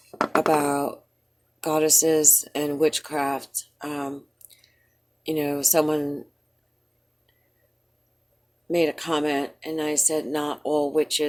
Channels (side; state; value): both; identical; correlation 1.00